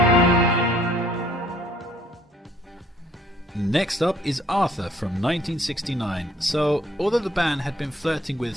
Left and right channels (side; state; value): both; normal; correlation 0.61